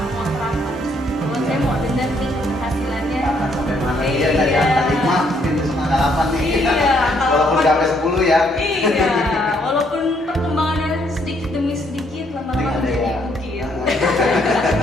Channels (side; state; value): both; normal; correlation 0.70